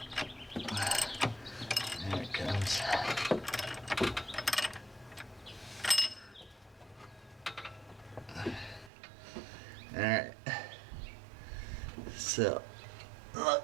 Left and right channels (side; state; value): left; drops out; at 8.9 s